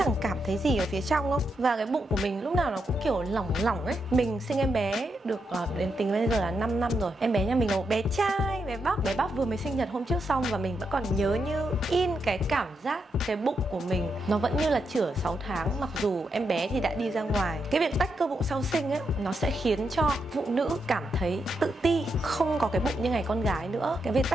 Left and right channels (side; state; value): both; normal; correlation 0.83